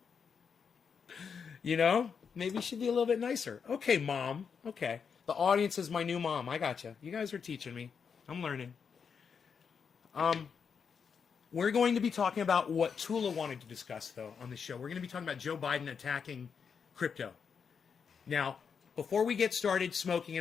You know? Maybe you should be a little bit nicer. Okay, Mom. Okay. The audience is my new mom. I gotcha. You guys are teaching me. I'm learning. We're going to be talking about what Tula wanted to discuss, though, on the show. We're going to be talking about Joe Biden attacking crypto. Now, before we get started smoking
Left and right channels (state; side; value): quieter; right; 6.4 dB